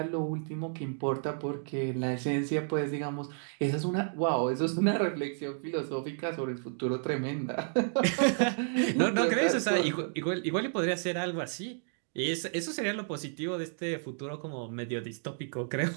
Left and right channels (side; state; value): left; silent; digital silence